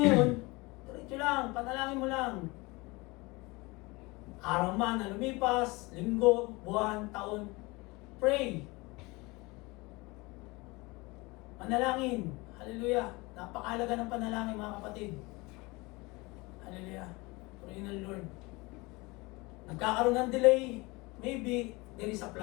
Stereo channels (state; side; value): quieter; right; 24.3 dB